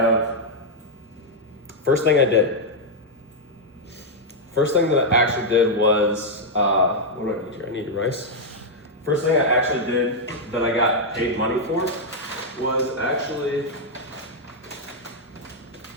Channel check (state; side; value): normal; both; correlation -0.03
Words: first thing I did. First thing that I actually did was, what do I need here? I need rice. First thing I actually did that I got paid money for was actually